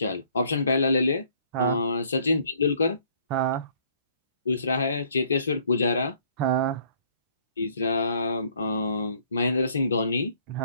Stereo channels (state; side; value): inverted; both; correlation -0.62